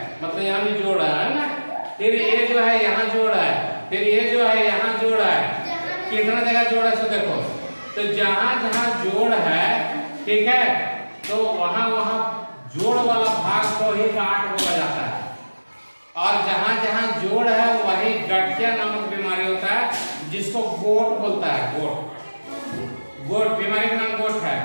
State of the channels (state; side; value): inverted; both; correlation -1.00